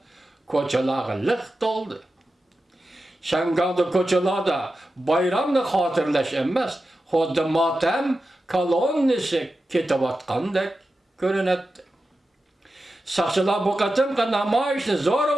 koçaları lık doldu. Şangan'da koçalarda bayramını hatırlaş emez, hodda matem kolonnisi ketip atkandek görünetti. Sakçılar bu katımka namayişini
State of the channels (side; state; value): both; normal; correlation 0.92